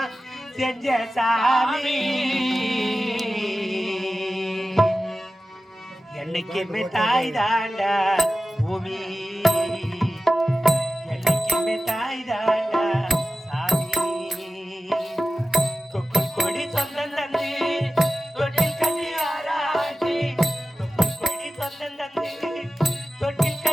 செஞ்ச சாமி என்னைக்குமே தாய் தாண்டா பூமி என்னைக்குமே தாய் தாண்டா சாமி தொப்புள் கொடி சொந்தம் தந்து தொட்டில் கட்டி ஆராட்டி தொப்புள் கொடி சொந்தம் தந்து தொட்டில்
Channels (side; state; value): both; normal; correlation 0.95